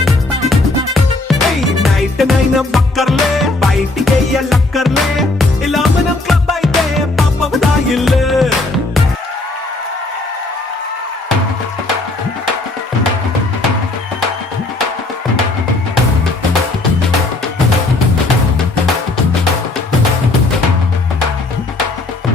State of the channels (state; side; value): quieter; right; 3.0 dB